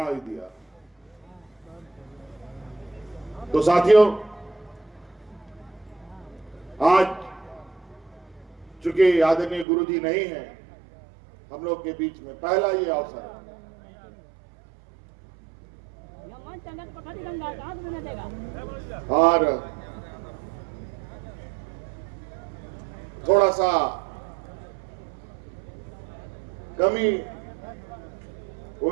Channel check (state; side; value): drops out; left; at 9.7 s